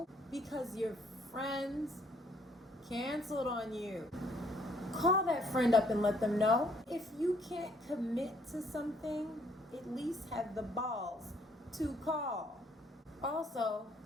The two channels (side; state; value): both; normal; correlation 0.65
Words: because your friends canceled on you? Call that friend up and let them know. If you can't commit to something, at least have the balls to call. Also,